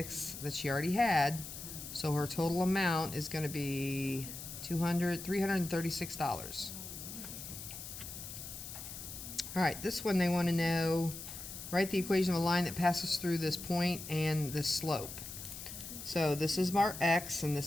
that she already had. So her total amount is going to be $336. All right, this one they want to know, write the equation of a line that passes through this point and this slope. So this is our x and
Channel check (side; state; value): left; noise; hiss, 10 dB below the sound